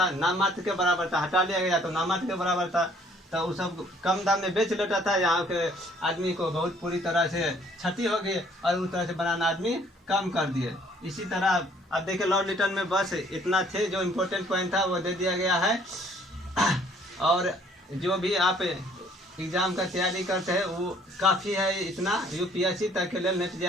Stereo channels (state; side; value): normal; both; correlation 0.60